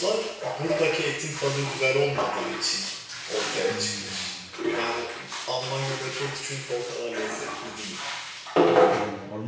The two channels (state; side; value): identical; both; correlation 1.00